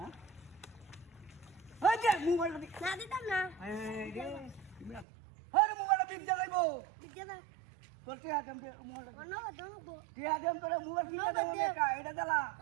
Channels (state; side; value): drops out; left; at 5.1 s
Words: ওই দে মোবাইল দে না দিতাম না এই রে আরে মোবাইল দিন যাইবো দিতে দাও তোর কি আদম দে মোবাইল অন্য ঘর দাও গো কি আদম তোর মোবাইল কিনে দাও না এটা দিলা